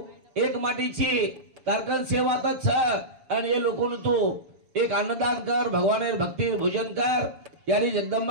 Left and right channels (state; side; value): late; left; 7.0 ms